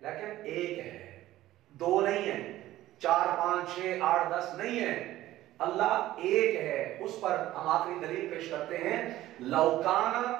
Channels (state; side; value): quieter; left; 15.0 dB